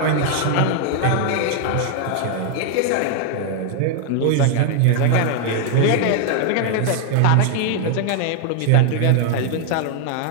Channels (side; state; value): both; different; correlation 0.00